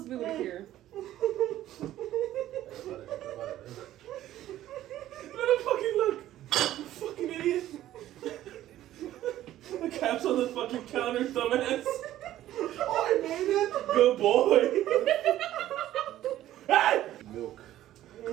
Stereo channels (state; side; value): quieter; left; 13.5 dB